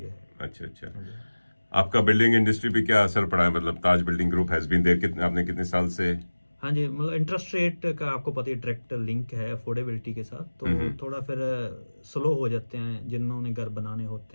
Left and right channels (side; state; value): both; inverted; correlation -1.00